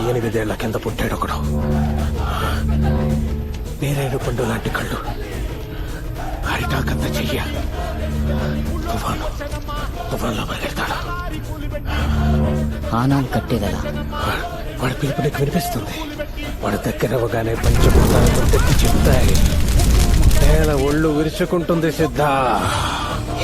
ఏళ్ల కింద పుట్టాడు ఒకడు. నేరేడు పండు లాంటి కళ్ళు, అరిటాకంత చెయ్య. తుఫాన్లో పరిగెడతాడు. ఆనాలు కట్టేదలా? వాడి పిలుపు నీకు వినిపిస్తుంది. వాడి దగ్గర అవగానే పంచభూతాలతో తెచ్చి చెప్తాయి. నేల ఒళ్ళు విరుచుకుంటుంది సిద్ధ.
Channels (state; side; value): identical; both; correlation 1.00